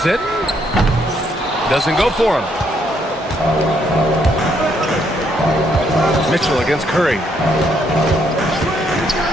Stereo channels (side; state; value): both; normal; correlation 0.72